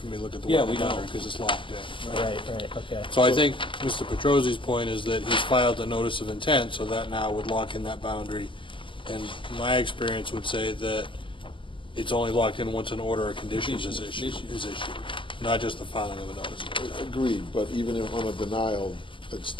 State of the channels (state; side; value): late; right; 0.25 ms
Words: me to look at the Yeah, we wetland don't. boundary, because it's locked in. Right, okay. So I think Mr. Petrosi's point is that he's filed a notice of intent, so that now would lock in that boundary And my experience would say that it's only locked in once an order of conditions is issued, not just the filing of a notice. Agreed, but even if on a denial, it's